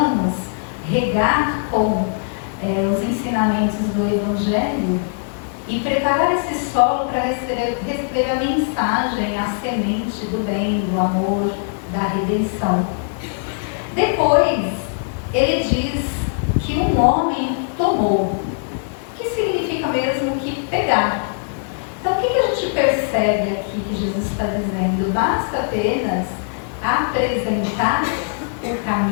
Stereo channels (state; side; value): silent; right; digital silence